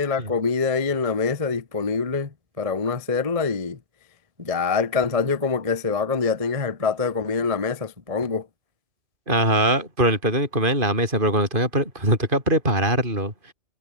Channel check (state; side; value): late; left; 2.5 ms